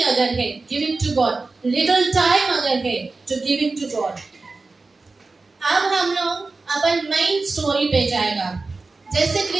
अगर है, give it to God. Little time अगर है, to give it to God. अब हम लोग अपन मेन स्टोरी पे जाएगा। जैसे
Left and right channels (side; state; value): left; quieter; 3.7 dB